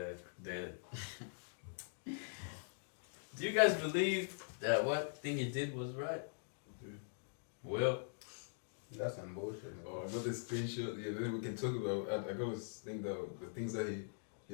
do you guys believe that what thing he did was right? Well, That's some bullshit. Oh, I got the screenshot. Yeah, then we can talk about. I always think that the things that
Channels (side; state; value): right; silent; digital silence